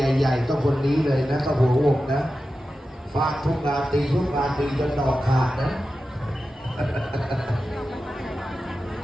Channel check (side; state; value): both; normal; correlation 0.92